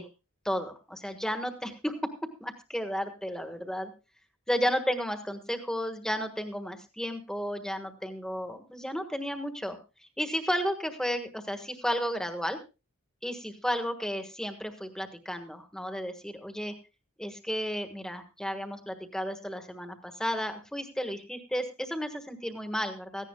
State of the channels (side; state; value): both; normal; correlation 0.89